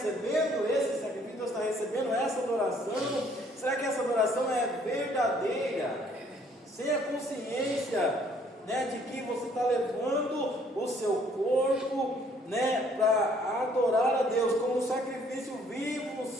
esse sacrifício? Deus está recebendo essa adoração? Será que essa adoração é verdadeira? Sem a consciência, né, de que você está levando o seu corpo, né, para adorar a Deus como um sacrifício vivo,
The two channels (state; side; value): normal; both; correlation 0.62